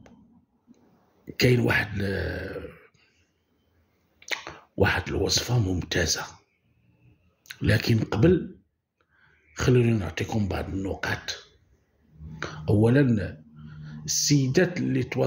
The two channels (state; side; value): identical; both; correlation 1.00